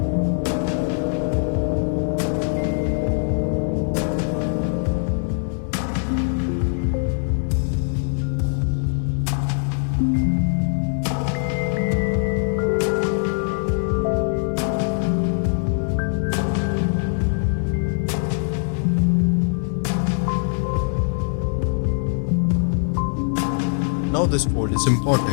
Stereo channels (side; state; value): right; silent; 64 dB below the other